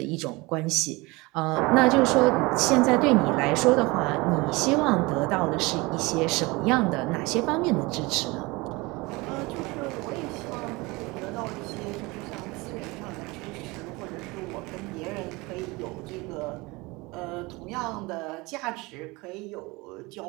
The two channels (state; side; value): quieter; left; 23.9 dB